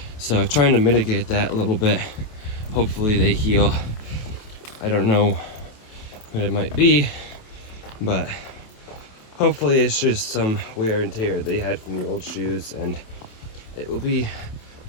So I'm trying to mitigate that a little bit. Hopefully they heal. I don't know what it might be, but hopefully it's just some wear and tear they had from the old shoes, and it will be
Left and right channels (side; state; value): right; late; 27 ms